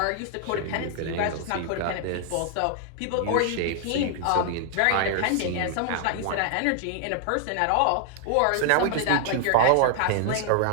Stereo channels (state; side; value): different; both; correlation 0.00